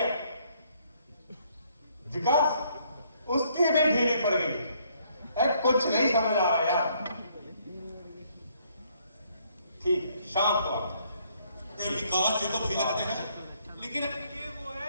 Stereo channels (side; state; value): both; inverted; correlation -0.67